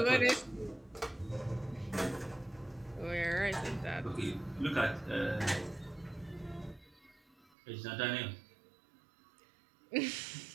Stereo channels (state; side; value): drops out; left; at 7.5 s